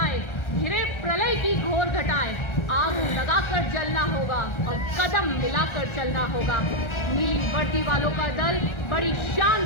आए, घिरे प्रलय की घोर घटाएं, आग लगाकर जलना होगा और कदम मिलाकर चलना होगा। नीली वर्दी वालों का दल बड़ी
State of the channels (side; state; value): right; late; 1.4 ms